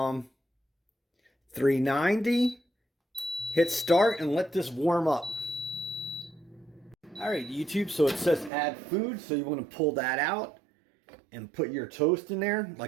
Hit start and let this warm up. All right, YouTube, so it says add food, so you want to pull that out and put your toast in there.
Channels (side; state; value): left; drops out; at 8.5 s